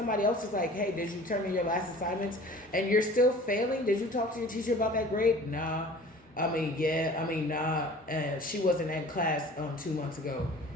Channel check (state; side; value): normal; both; correlation 0.46